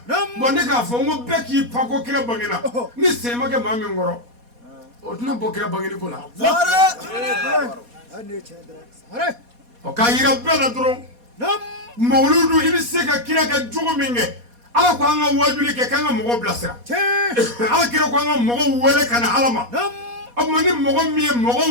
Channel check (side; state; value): left; late; 4.2 ms